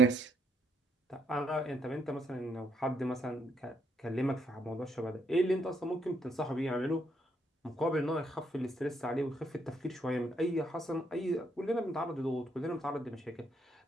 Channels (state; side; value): normal; both; correlation 0.73